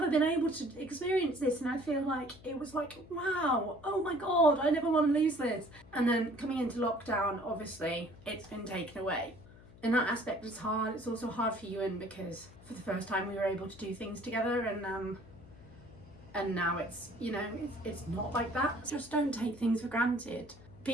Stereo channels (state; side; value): noise; left; hum, 21 dB below the sound